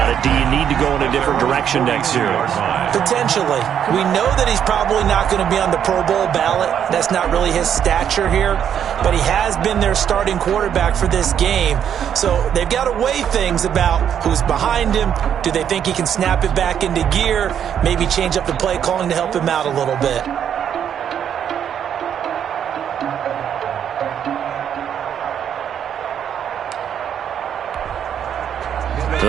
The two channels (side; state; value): left; quieter; 8.9 dB